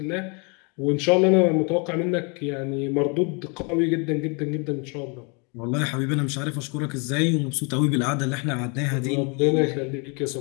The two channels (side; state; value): right; quieter; 33.6 dB